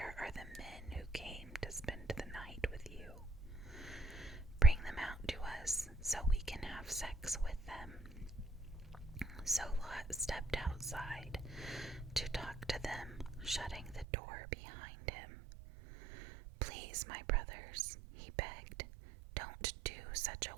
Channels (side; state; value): left; drops out; at 14.1 s